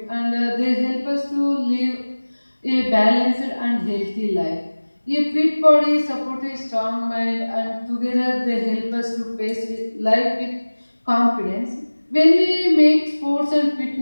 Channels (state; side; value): inverted; both; correlation -1.00